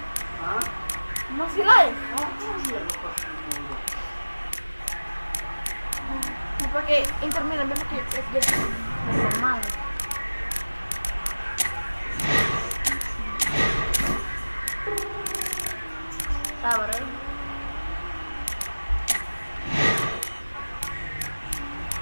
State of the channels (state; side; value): inverted; both; correlation -1.00